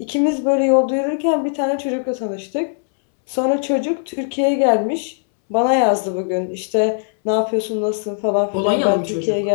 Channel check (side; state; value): right; silent; 66 dB below the other